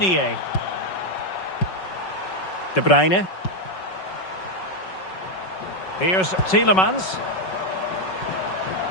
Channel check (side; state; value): right; late; 5.4 ms